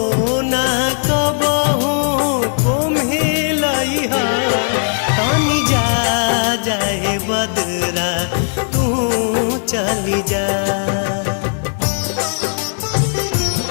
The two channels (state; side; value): silent; right; 68 dB below the other